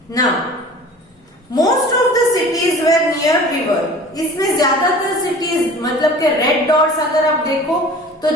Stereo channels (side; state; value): both; normal; correlation 0.43